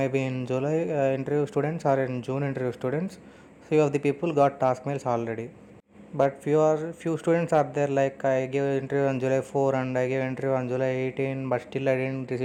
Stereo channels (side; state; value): both; identical; correlation 1.00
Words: be in July interview students or in June interview students. Few of the people got task mails already. But few students are there, like I gave interview on July 4 and I gave interview on July 18, but still I didn't